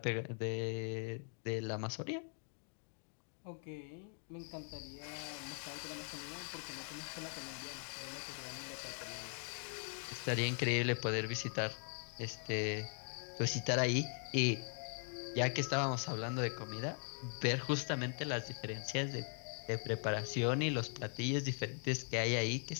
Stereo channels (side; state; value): right; silent; 51 dB below the other